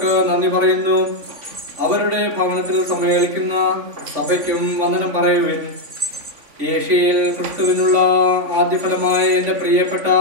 നന്ദി പറയുന്നു. അവരുടെ ഭവനത്തിൽ സമ്മേളിക്കുന്ന സഭയ്ക്കും വന്ദനം പറയുവിൻ. ഏഷ്യയിൽ ക്രിസ്തുവിനുള്ള ആദ്യഫലമായ എൻ്റെ പ്രിയപ്പെട്ട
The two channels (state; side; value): late; left; 3.5 ms